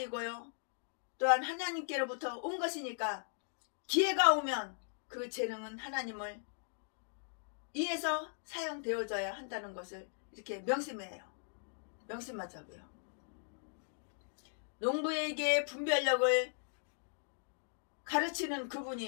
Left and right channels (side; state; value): right; silent; digital silence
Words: 또한 하나님께로부터 온 것이니까 기회가 오면 그 재능은 하나님을 위해서 사용되어져야 한다는 것을 이렇게 명심하자고요. 농부에게 분별력을 가르치는